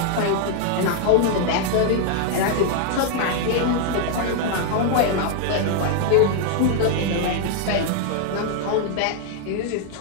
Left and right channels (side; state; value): both; different; correlation 0.00